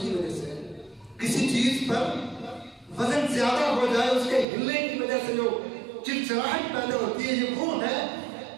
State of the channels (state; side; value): drops out; left; at 4.5 s